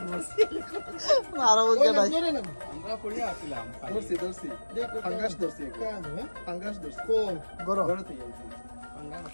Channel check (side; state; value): both; inverted; correlation -1.00